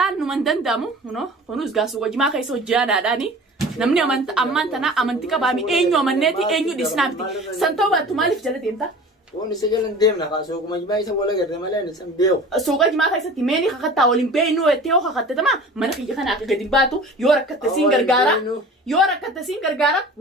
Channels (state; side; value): normal; both; correlation 0.41